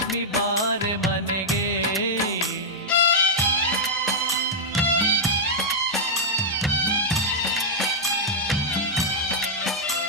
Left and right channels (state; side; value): normal; both; correlation -0.05